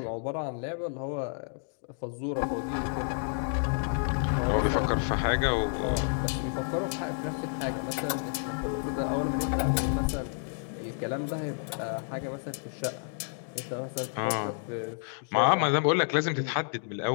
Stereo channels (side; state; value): right; silent; digital silence